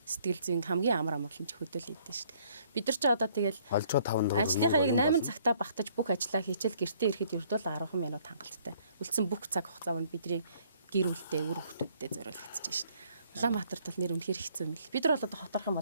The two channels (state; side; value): inverted; both; correlation -0.63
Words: сэтгэл зүйн хамгийн амар амгалан ч хөдөл идэв шүү дээ. Бид нар ч одоо тэгэл олжоо 5 дуруу. ажлынхаа яг 8 цагтаа багтаж бүх ажлаа хийчихэл гэртээ ирэхэд ердөө 10 минут хангалттай. Үлдсэн бүх цаг хугацаа нь бидний гэр бүлтэй үр хүүхдүүдэд зориулагдчихж шүү дээ. Улаанбаатарт бол нэр үнэхээр хэцүү юм л. Бид нар бол одоо хотарх юм